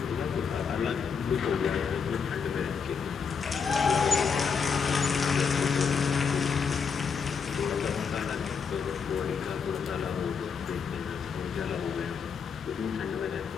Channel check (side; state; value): right; quieter; 6.1 dB